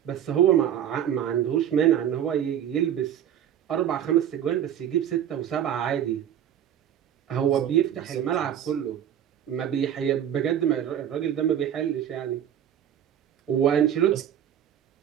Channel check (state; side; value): quieter; left; 10.0 dB